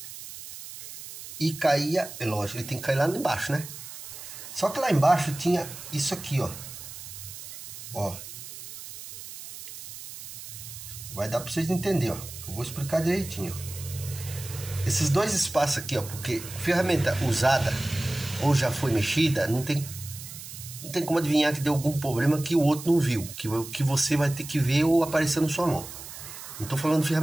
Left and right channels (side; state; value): right; noise; hiss, 12 dB below the sound